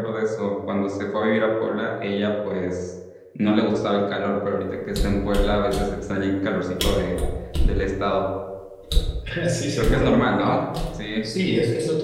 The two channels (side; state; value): both; identical; correlation 1.00